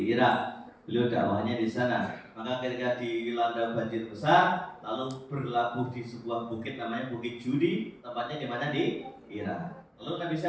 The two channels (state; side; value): identical; both; correlation 1.00